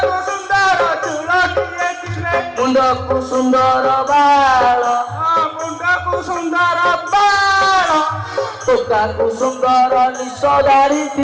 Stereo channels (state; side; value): identical; both; correlation 1.00